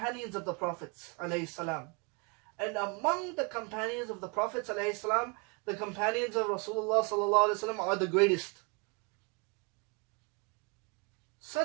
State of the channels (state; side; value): quieter; left; 32.0 dB